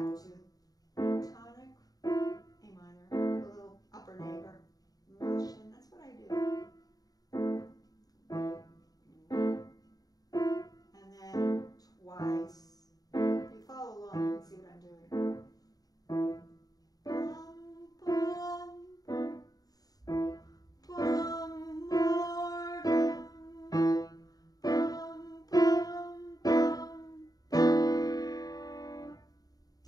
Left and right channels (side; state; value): right; late; 0.18 ms